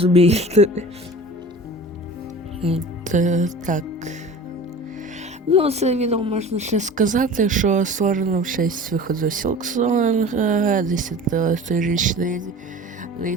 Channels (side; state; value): both; normal; correlation 0.39